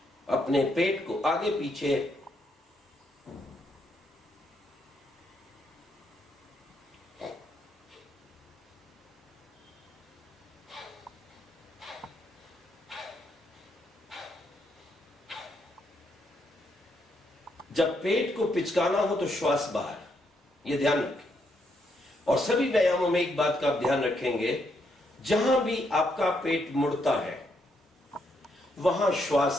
अपने पेट को आगे पीछे जब पेट को पिचकाना हो तो श्वास बाहर, यह ध्यान रखें। और सभी व्यायामों में एक बात का आप ध्यान रखेंगे, जहां भी आपका पेट मुड़ता है वहां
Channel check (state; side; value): normal; both; correlation 0.77